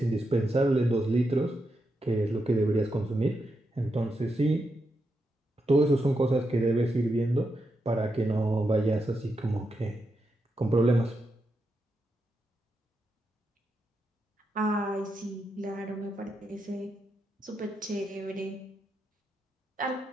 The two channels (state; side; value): normal; both; correlation 0.85